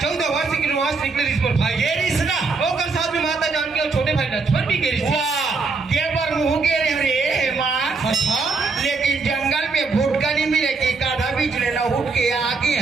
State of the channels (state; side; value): quieter; left; 4.2 dB